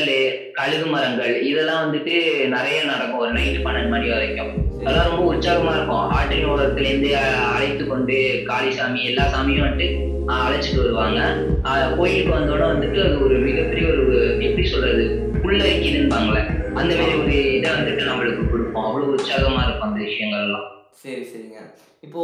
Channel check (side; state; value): both; identical; correlation 1.00